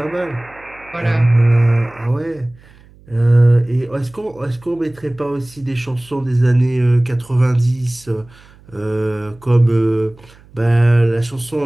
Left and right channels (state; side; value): noise; right; hum, 26 dB below the sound